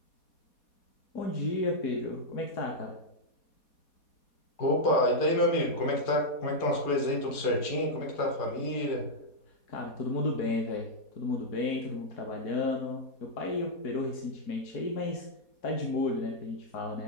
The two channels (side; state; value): right; late; 4.2 ms